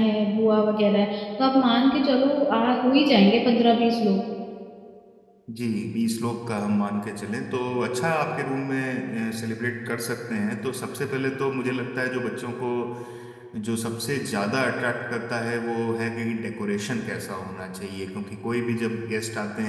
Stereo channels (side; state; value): both; identical; correlation 1.00